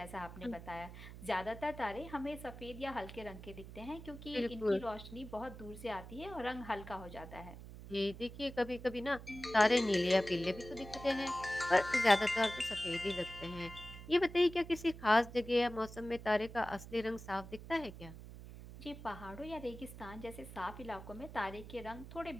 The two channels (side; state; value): right; noise; hum, 13 dB below the sound